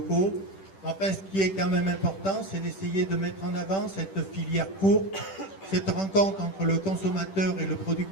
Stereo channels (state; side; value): late; right; 10 ms